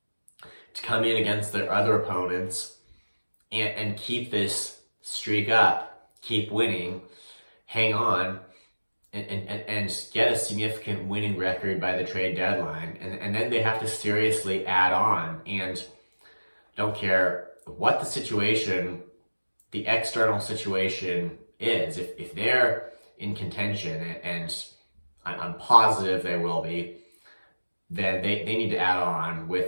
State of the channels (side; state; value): both; inverted; correlation -1.00